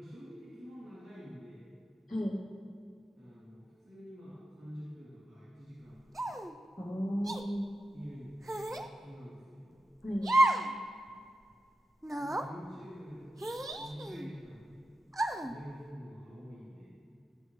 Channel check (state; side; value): normal; both; correlation 0.91